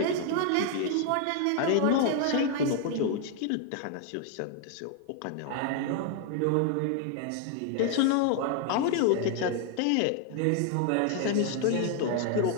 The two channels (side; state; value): both; different; correlation 0.00